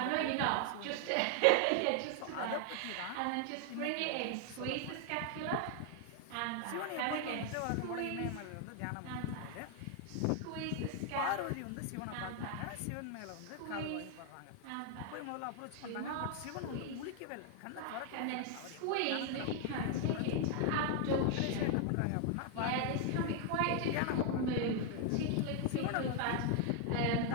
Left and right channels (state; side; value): different; both; correlation 0.00